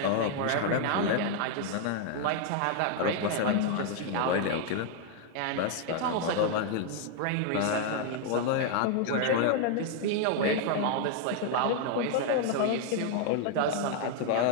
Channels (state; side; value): different; both; correlation 0.00